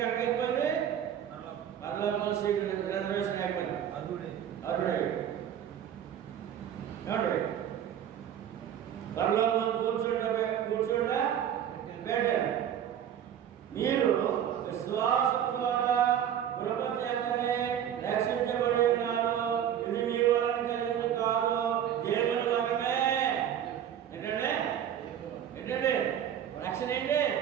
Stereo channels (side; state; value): left; quieter; 9.7 dB